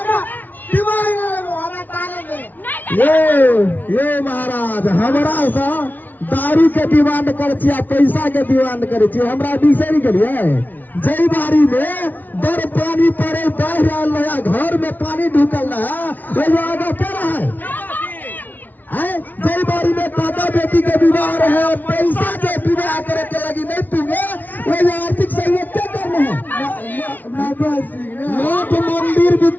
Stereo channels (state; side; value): late; right; 0.082 ms